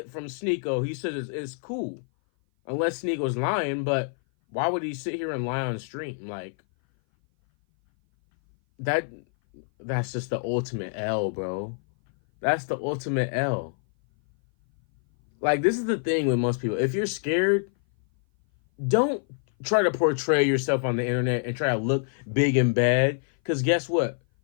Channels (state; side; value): silent; right; 57 dB below the other